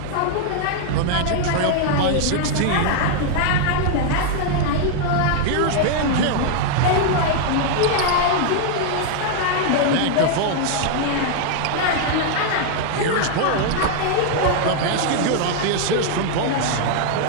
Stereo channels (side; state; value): both; different; correlation 0.00